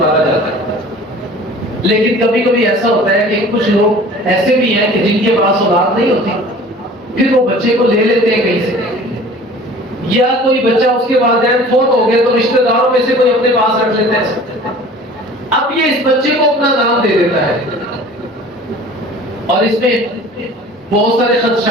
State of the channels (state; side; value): normal; both; correlation 0.45